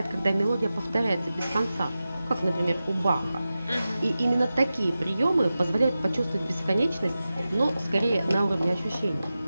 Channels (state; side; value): inverted; both; correlation -0.94